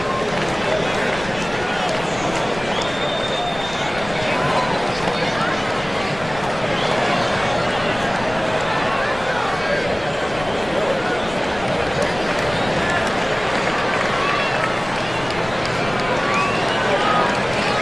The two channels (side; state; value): left; noise; rumble, 15 dB below the sound